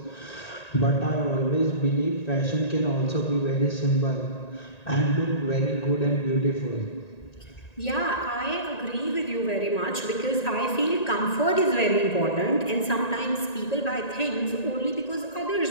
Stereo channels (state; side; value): late; right; 1.9 ms